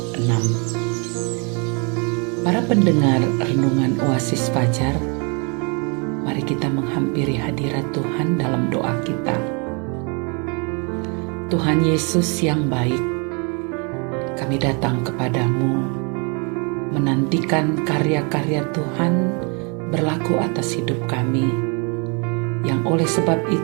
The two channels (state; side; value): quieter; left; 34.2 dB